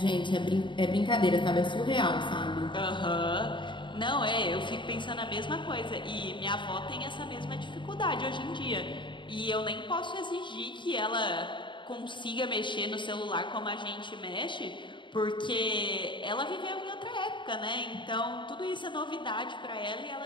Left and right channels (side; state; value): right; late; 0.23 ms